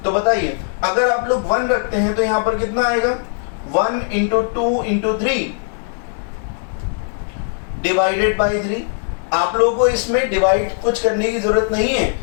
तो बताइए अगर आप लोग 1 रखते हैं तो यहाँ पर कितना आएगा, 1 × 2 × 3 डिवाइडेड बाई 3। आप लोगों को इसमें डिवाइड कुछ करने की जरूरत नहीं है,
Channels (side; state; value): right; silent; 64 dB below the other